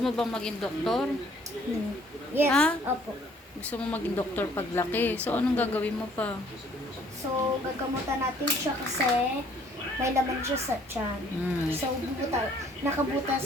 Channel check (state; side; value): normal; both; correlation 0.60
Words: bang maging doktor? Yes, Ha? opo. Gusto mo maging doktor paglaki. So, anong gagawin mo pa? So, gagamutan natin siya kasi may laman siya sa tiyan. So,